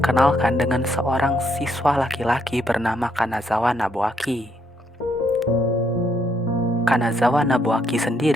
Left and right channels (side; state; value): both; normal; correlation 0.74